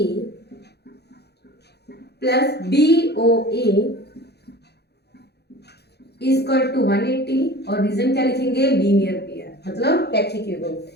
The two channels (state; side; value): late; right; 0.48 ms